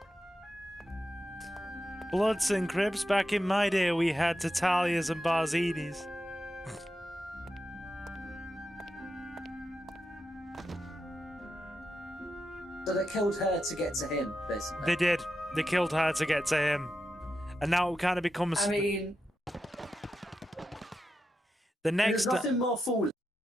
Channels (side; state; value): both; normal; correlation 0.88